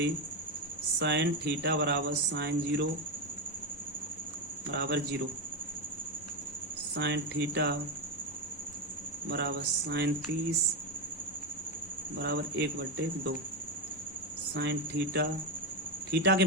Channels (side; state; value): both; normal; correlation 0.10